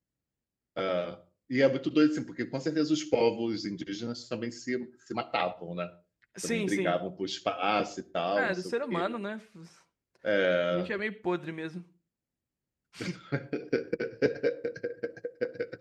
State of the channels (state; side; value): identical; both; correlation 1.00